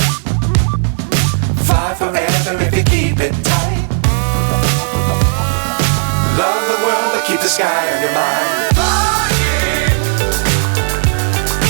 Fly forever if you keep it tight. Love the world but keep the sky on your mind.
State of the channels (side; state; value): left; silent; digital silence